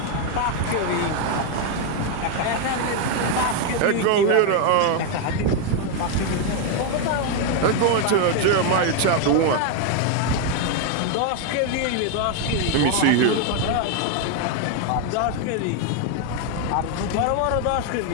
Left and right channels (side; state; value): both; different; correlation 0.01